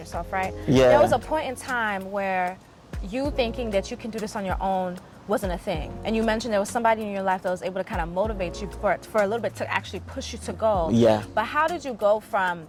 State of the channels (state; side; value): identical; both; correlation 1.00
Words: right? Yeah. There was a point in time where you thinking that you can do this on your own wasn't a thing. And you mentioned there was somebody in your life that was able to kind of motivate you for a little bit to actually push you to go. Yeah. But how did you go from,